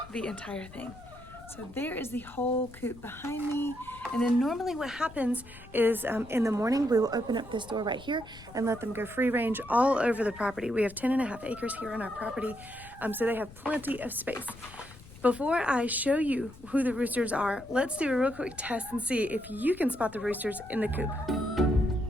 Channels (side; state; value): left; noise; rumble, 19 dB below the sound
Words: the entire thing. So there is the whole coop behind me. And then normally what happens is in the morning, we will open up this door right here and let them go free range all over the property. We have 10.5 acres here on our property, so they have plenty of space. Before I show you who the roosters are, let's do a real quick test and see if you can spot the roosters in the coop.